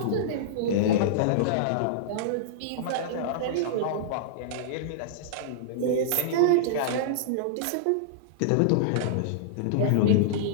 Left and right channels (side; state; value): both; different; correlation -0.02